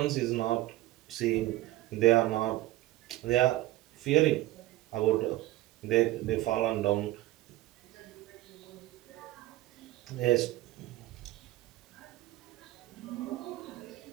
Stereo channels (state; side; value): quieter; left; 16.8 dB